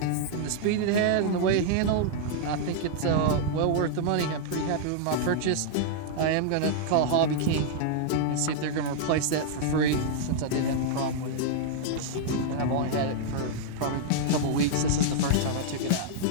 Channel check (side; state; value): both; different; correlation -0.01